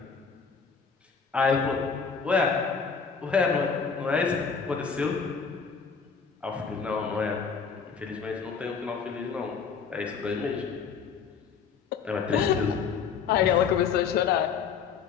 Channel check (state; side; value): quieter; right; 6.0 dB